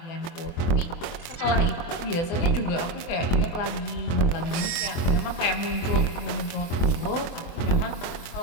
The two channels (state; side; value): late; right; 24 ms